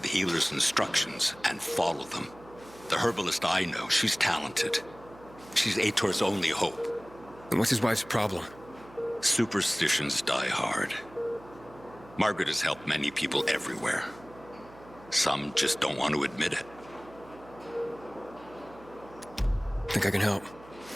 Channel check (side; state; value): right; noise; hum, 21 dB below the sound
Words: healer's instructions and follow them. The herbalist I know, she's talented. She's Aitor's only hope. And what's his wife's problem? Superstitions die hard. Margaret has helped many people everywhere. Some just don't want to admit it. Think I can help?